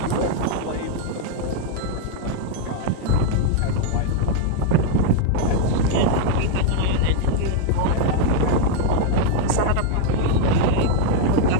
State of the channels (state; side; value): different; both; correlation 0.01